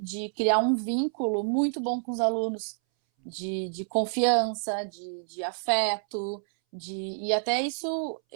criar um vínculo muito bom com os alunos, de confiança, de afeto, e até isso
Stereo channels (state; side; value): silent; left; 59 dB below the other